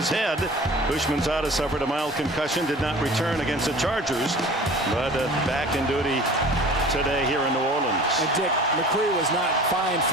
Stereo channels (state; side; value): normal; both; correlation 0.43